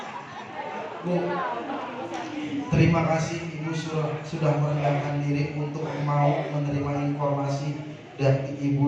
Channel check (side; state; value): both; identical; correlation 1.00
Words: Bu, terima kasih Ibu sudah merendahkan diri untuk mau menerima informasi dari